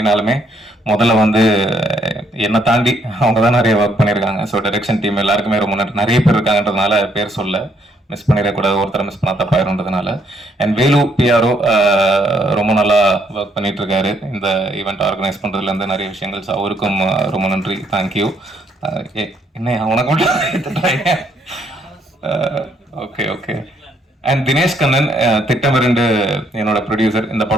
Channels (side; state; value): both; normal; correlation 0.70